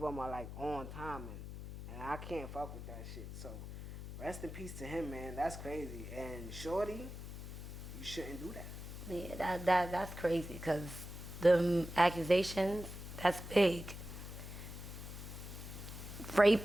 are like on timing. And I can't fuck with that shit. So rest in peace to him, man. That's crazy. And Shorty, you shouldn't do that. Yeah, that's crazy because the accusations, that's big.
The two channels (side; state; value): left; noise; hum, 9 dB below the sound